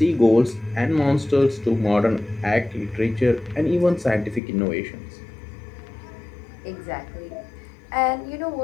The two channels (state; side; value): drops out; right; at 4.4 s